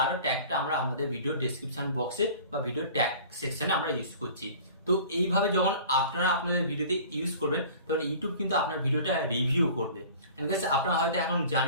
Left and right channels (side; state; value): both; inverted; correlation -0.44